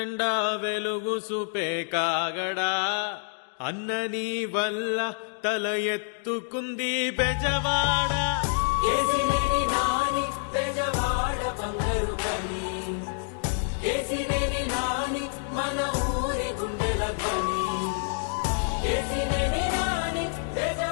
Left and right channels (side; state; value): right; silent; digital silence